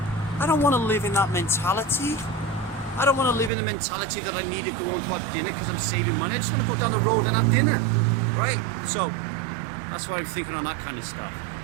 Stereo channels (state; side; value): drops out; left; at 3.5 s